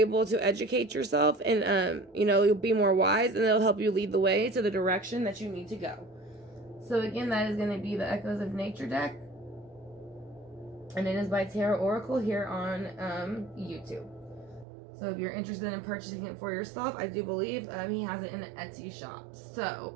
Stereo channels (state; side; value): drops out; left; at 14.7 s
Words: to educate yourself, and you know, you'll be more wise, and it'll help you lead the way to the direction that you need to go. So again, that is going to be the Echoes of Nature deck. And it is by Tarot Oracle here on YouTube. So if you're interested in purchasing it for yourself, I do believe he has it in the Etsy shop.